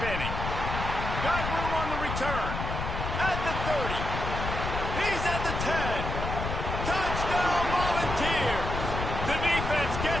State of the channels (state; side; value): noise; left; rumble, 4 dB below the sound